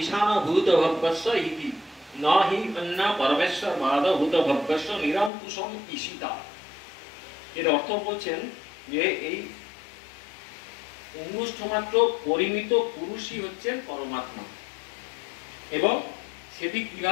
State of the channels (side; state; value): right; drops out; at 5.3 s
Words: ভূত ভব্যস্য ইতি ন হি অন্য পরমেশ্বর বাদ ভূত ভব্যস্য নিরঙ্কুশম ঈশিতা। এর অর্থ বলছেন যে এই অঙ্গুষ্ঠ মাত্র পরিমিত পুরুষই হচ্ছেন পরমাত্মা, এবং সেটি